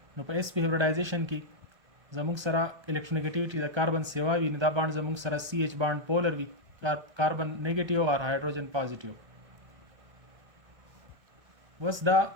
نو په sp هیبریډایزیشن کې زموږ سره الکترونیګټیویټي د کاربن سیوا وي نو دا بانډ زموږ سره CH بانډ پولر وي یا کاربن نیگیټیو او هایدروجن پازیټیو وس دا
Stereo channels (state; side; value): late; left; 1.3 ms